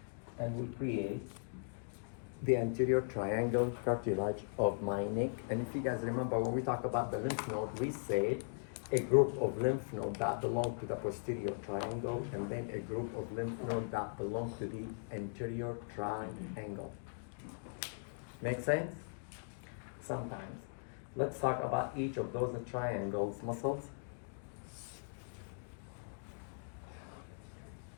and we create the anterior triangle cartilage of my neck. And if you guys remember, when we talk about the lymph node, we said a group of lymph nodes that belong to the posterior triangle, and then a group of lymph nodes that belong to the anterior triangle. Make sense? Sometimes. Let's talk about each of those triangles muscles.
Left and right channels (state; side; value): silent; right; digital silence